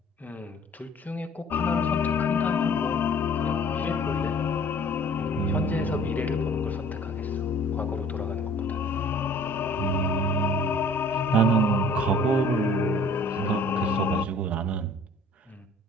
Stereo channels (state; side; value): normal; both; correlation 0.52